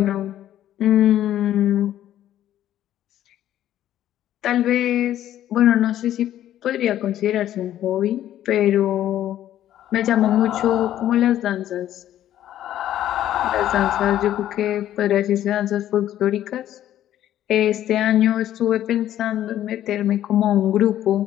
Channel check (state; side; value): quieter; right; 12.1 dB